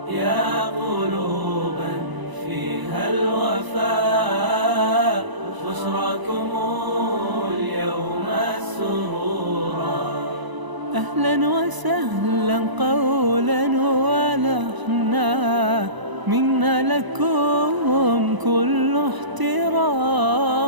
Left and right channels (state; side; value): late; left; 1.0 ms